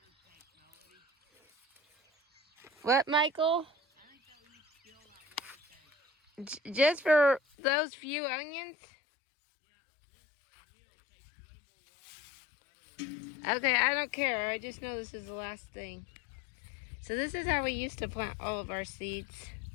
What, Michael? Just for those few onions? Okay, I don't care. I just know this is the last thing. So this is how we used to plant all of our seeds.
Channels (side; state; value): right; drops out; at 7.4 s